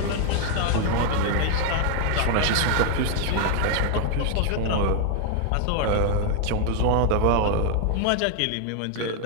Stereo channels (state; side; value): different; both; correlation 0.00